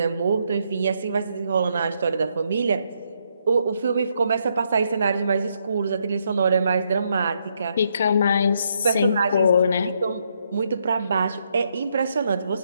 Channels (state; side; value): inverted; both; correlation -0.76